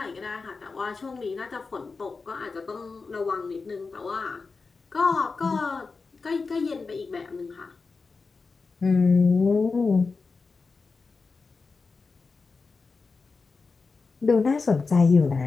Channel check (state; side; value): quieter; right; 4.4 dB